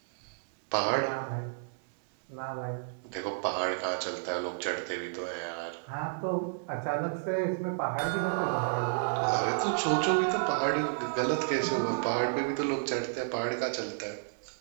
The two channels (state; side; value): silent; left; digital silence